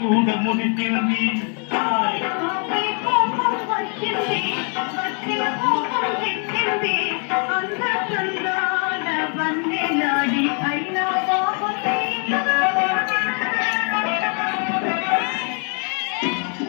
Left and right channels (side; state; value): right; quieter; 39.7 dB